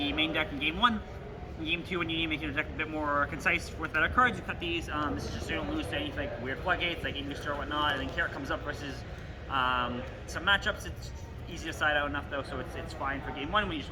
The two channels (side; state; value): both; identical; correlation 1.00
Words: main deck in game 1. In game 2, when you need to make your deck a bit more concise with better cards, you cut these. This is just so you don't lose to any like weird floodgates, like English or whatnot. And then carrot comes up versus some matchups. It's easy to side out enough though, so it's fine for game 1 when you just